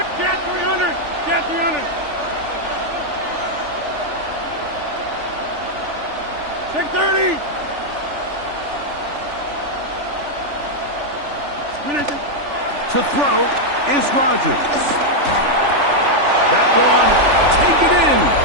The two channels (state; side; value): late; left; 3.4 ms